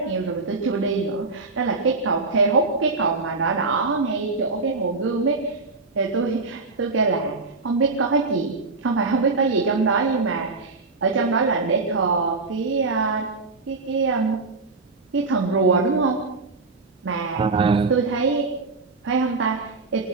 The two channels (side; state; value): left; quieter; 3.9 dB